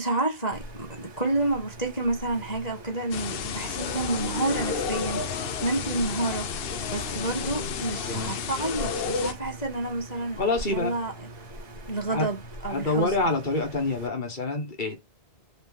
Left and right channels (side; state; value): right; late; 2.7 ms